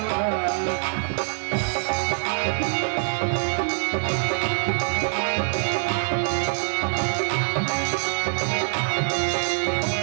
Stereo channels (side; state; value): left; silent; digital silence